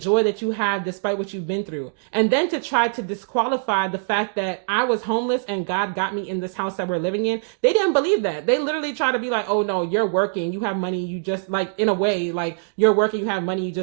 that you have despite what you've been through. And then to try to disqualify the fact that I was homeless and God got me in this house that we're living in. They didn't believe that. They literally try to be like, oh no, you're working, you have money, you just, like, in a way, like, you're working, you have money, you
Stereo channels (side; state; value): left; silent; digital silence